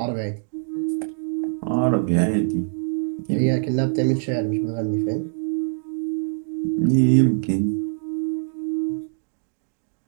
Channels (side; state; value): left; silent; 63 dB below the other